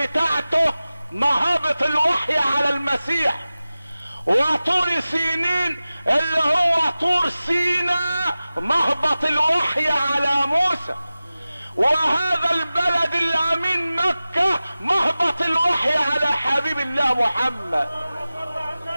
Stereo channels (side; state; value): both; inverted; correlation -0.96